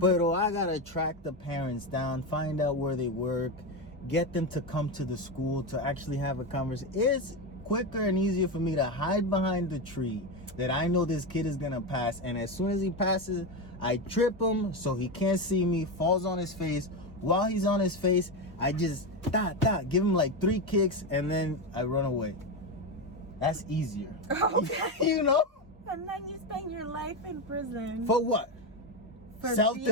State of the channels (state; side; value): normal; both; correlation 0.13